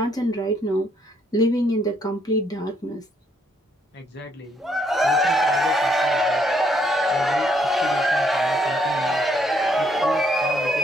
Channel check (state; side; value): normal; both; correlation 0.71